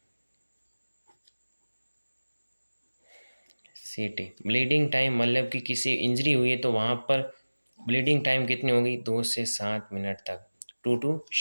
सीटी। ब्लीडिंग टाइम मतलब कि किसी इंजरी हुई है तो वहाँ पर ब्लीडिंग टाइम कितनी होगी 2 से 7 मिनट तक, 2 to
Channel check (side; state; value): both; inverted; correlation -1.00